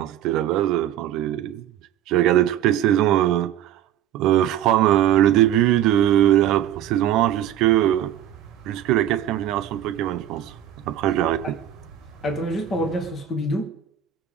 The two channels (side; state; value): left; quieter; 10.9 dB